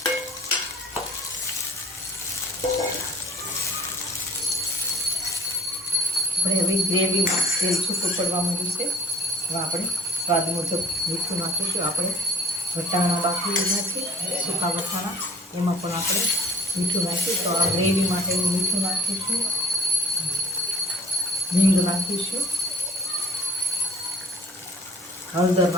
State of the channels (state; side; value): normal; both; correlation 0.55